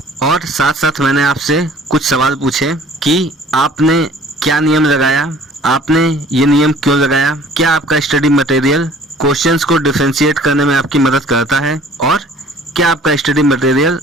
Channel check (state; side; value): normal; both; correlation 0.52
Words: और साथ साथ मैंने आपसे कुछ सवाल पूछे कि आपने क्या नियम लगाया, आपने ये नियम क्यों लगाया, क्या आपका स्टडी मटेरियल क्वेश्चंस को डिफरेंशिएट करने में आपकी मदद करता है, और क्या आपका स्टडी मटेरियल